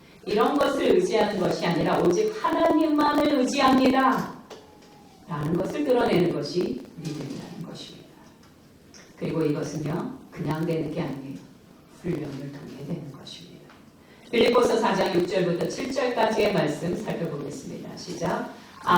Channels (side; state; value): both; identical; correlation 1.00